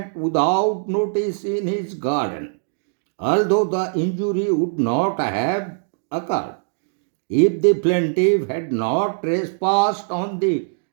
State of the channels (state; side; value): silent; left; digital silence